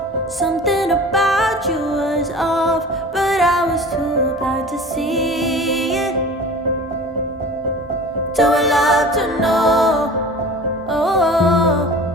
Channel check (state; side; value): normal; both; correlation 0.39